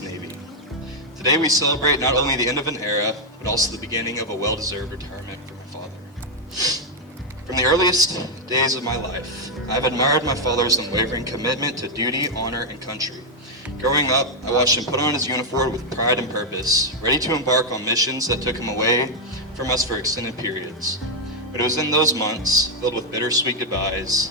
Navy. Today we celebrate not only the end of an era, but also the beginning of a well-deserved retirement for my father. From the earliest days of my life, I've admired my father's unwavering commitment to duty, honor, and country. Growing up, I watched him put on his uniform with pride and purpose, ready to embark on missions that took him away from us for extended periods. But it was in those months, filled with bittersweet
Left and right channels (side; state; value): both; normal; correlation 0.00